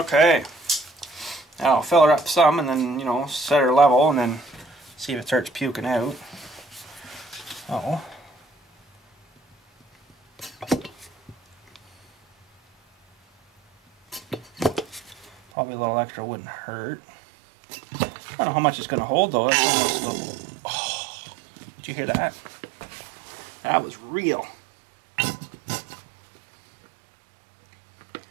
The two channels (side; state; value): left; drops out; at 15.4 s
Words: Now I'll fill her up some and then, you know, set her level and then see if it starts puking out. Oh. Probably a little extra wouldn't hurt. I don't know how much it's going to hold though. That's almost oh, did you hear that? That was real.